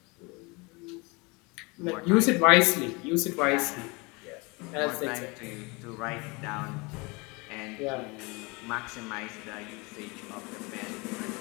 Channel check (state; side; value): quieter; right; 27.3 dB